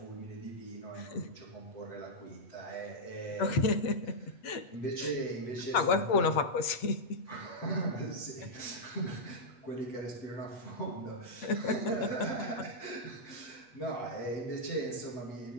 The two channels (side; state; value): right; late; 8.2 ms